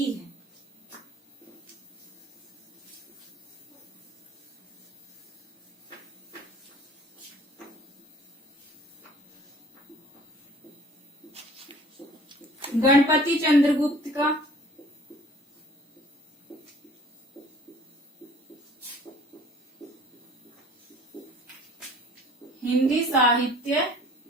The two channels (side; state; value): both; normal; correlation 0.50